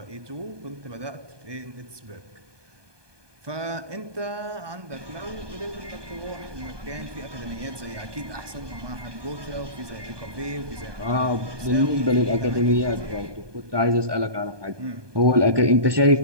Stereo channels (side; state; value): left; late; 1.2 ms